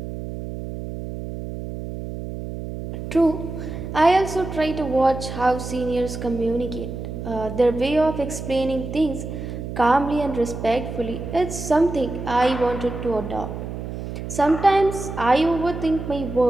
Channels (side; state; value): right; noise; hum, 7 dB below the sound